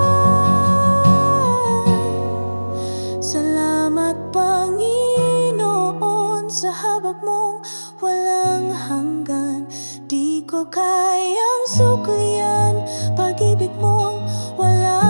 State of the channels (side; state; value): both; inverted; correlation -1.00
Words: Salamat, Panginoon, sa habag mong walang hanggan. Di ko kayang suklian, pag-ibig mong